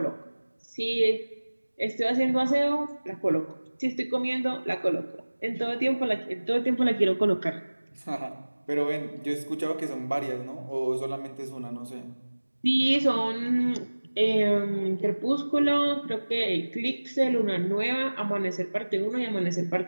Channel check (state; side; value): inverted; both; correlation -1.00